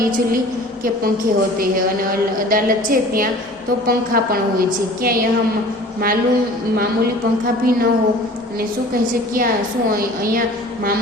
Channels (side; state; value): both; normal; correlation 0.45